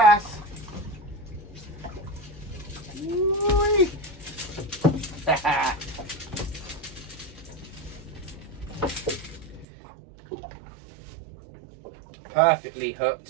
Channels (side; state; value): left; drops out; at 9.7 s